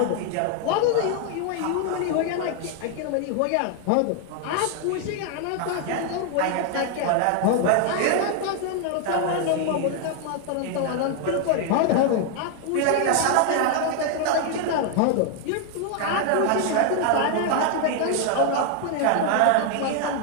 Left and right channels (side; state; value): both; different; correlation 0.00